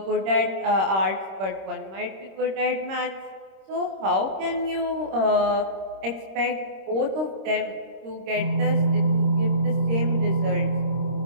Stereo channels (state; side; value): late; left; 26 ms